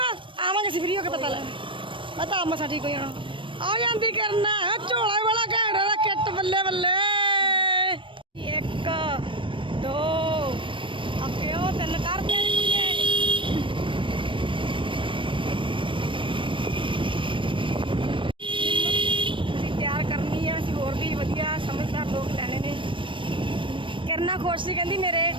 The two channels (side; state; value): left; late; 0.25 ms